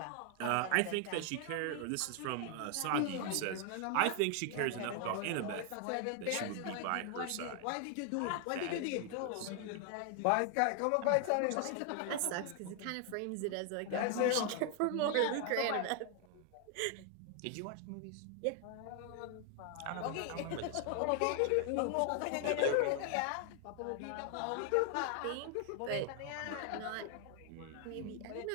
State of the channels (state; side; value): different; both; correlation 0.00